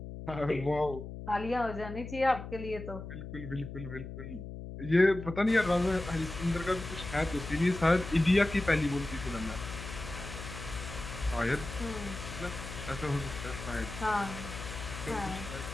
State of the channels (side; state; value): left; noise; hum, 9 dB below the sound